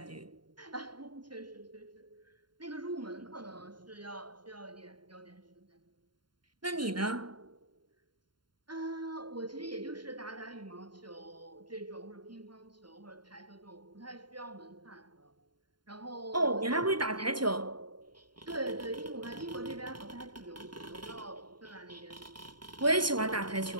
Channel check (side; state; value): left; late; 0.72 ms